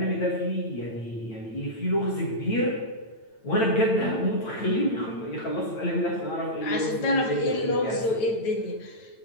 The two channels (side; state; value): right; late; 8.9 ms